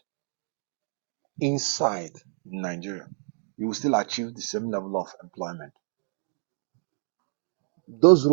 inside Nigeria, you will still achieve the same level of employment. Those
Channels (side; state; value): left; silent; digital silence